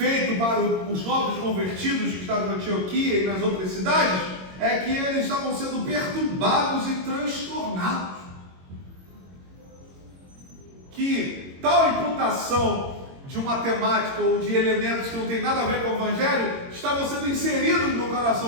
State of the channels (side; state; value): left; late; 22 ms